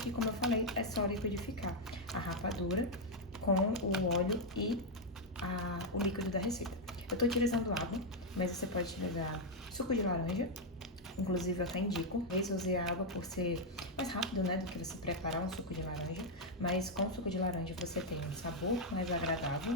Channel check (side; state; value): both; normal; correlation 0.00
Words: como eu falei, é só liquidificar a rapadura com o óleo e o líquido da receita. Eu tô utilizando água, mas você pode utilizar suco de laranja. Inclusive, eu até indico. Eu usei a água por ser mais rápido, né, do que você preparar um suco de laranja. Mas com o suco de laranja você tem um sabor mais agradável